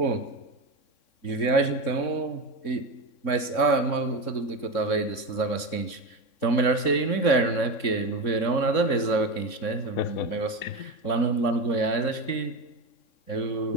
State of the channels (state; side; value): late; right; 3.6 ms